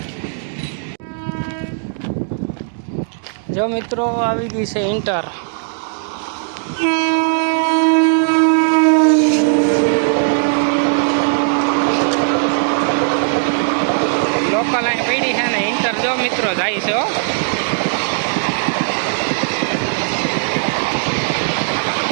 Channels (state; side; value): silent; left; digital silence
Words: જો મિત્રો આવી ગઈ છે ઇન્ટર. લોકલ અહીં પડી છે ને ઇન્ટર જો મિત્રો જાય છે.